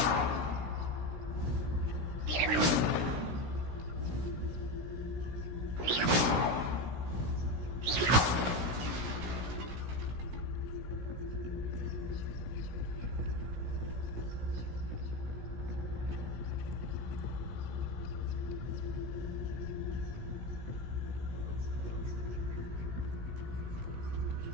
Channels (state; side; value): late; left; 17 ms